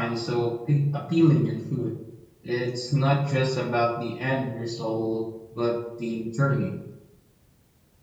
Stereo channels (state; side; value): identical; both; correlation 1.00